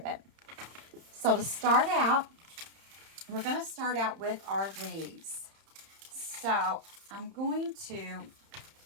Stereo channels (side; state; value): left; late; 31 ms